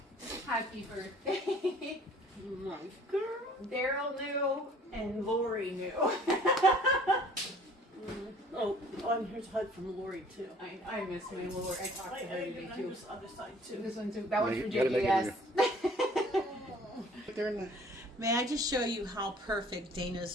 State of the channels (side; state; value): both; normal; correlation 0.53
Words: Happy birthday. Nice girl. Daryl knew and Lori knew. Oh, and here's a hug from Lori too. I miss my Lori. I talked to her today too. This other side too. This one too. That one's You for gotta make it JJS. They're in the- May I just show you how perfect